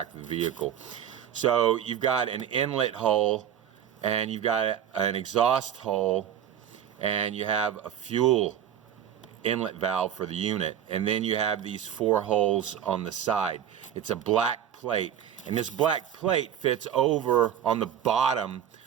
of the vehicle. So you've got an inlet hole, and you've got an exhaust hole, and you have a fuel inlet valve for the unit, and then you have these 4 holes on the side. It's a black plate, and this black plate fits over on the bottom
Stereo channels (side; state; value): left; quieter; 9.5 dB